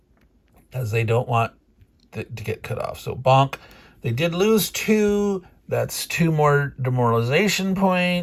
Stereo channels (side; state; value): both; identical; correlation 1.00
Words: as they don't want to get cut off. So bonk. They did lose 2. That's 2 more demoralization